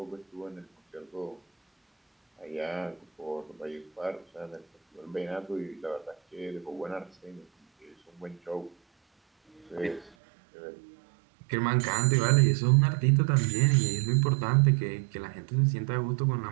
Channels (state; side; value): drops out; left; at 10.1 s